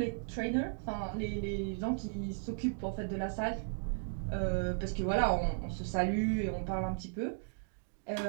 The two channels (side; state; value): left; silent; digital silence